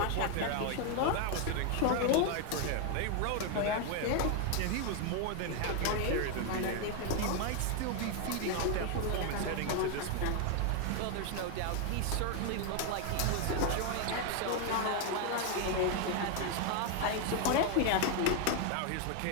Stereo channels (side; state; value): both; different; correlation 0.01